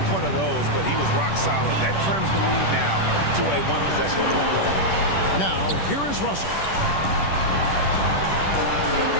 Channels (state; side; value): late; right; 10 ms